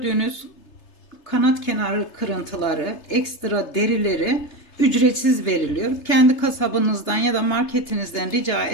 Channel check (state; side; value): late; right; 3.3 ms